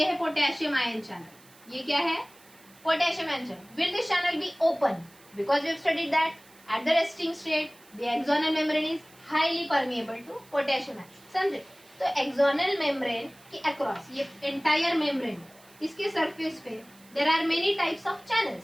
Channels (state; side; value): noise; right; hiss, 26 dB below the sound